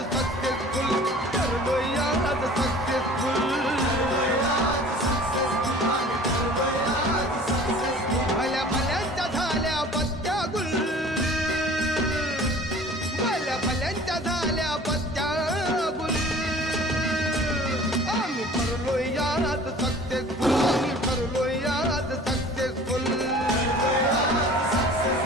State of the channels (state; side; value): normal; both; correlation 0.47